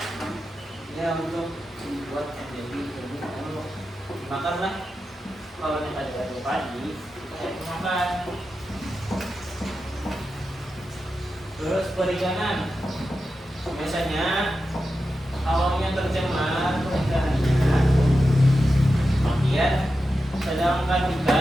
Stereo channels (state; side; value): normal; both; correlation 0.91